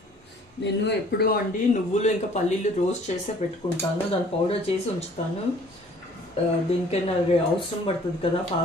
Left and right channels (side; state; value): both; normal; correlation 0.55